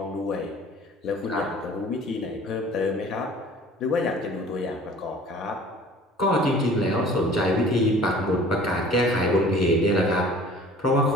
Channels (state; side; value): normal; both; correlation 0.48